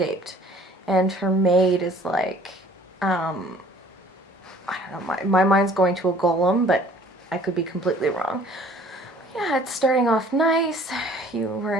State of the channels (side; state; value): both; normal; correlation 0.53